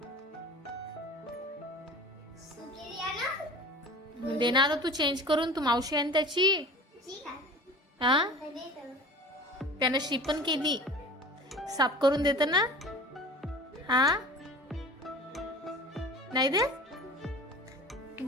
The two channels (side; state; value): both; normal; correlation 0.39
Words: सुकेली आहे ना? दे ना आता तू चेंज करून. तू मावशी आहे ना त्याची. ठीक आहे. हा तर दे तर. त्यानं शी पण केली. साफ करून देत ना. हा नाही दे. तू